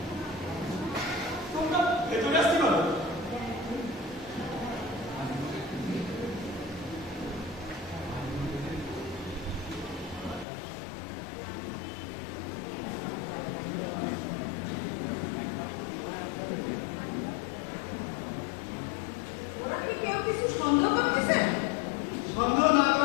তোমরা ভেতরে আসতে পারো। ওরা কি কেউ কিছু সন্দেহ করতেছে? সন্দেহ না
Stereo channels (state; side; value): drops out; right; at 10.5 s